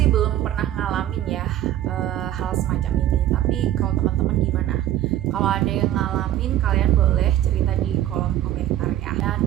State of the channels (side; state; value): left; quieter; 12.5 dB